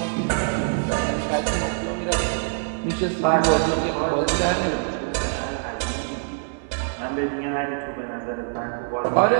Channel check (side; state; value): left; silent; digital silence